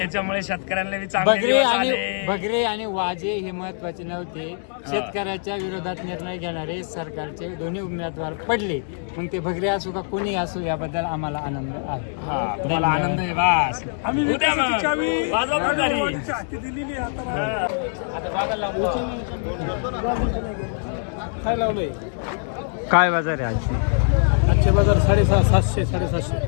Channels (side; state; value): right; silent; digital silence